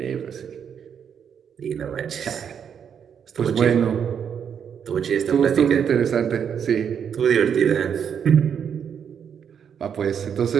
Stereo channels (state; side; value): quieter; left; 7.8 dB